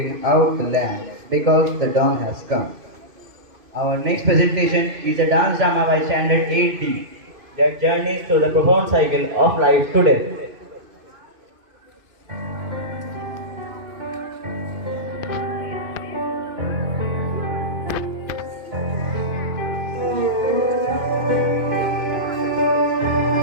out the lamp because the dawn has come. Our next presentation is a dance drama by Standard 8D that journeys through the profound cycle of life today.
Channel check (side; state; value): left; late; 2.5 ms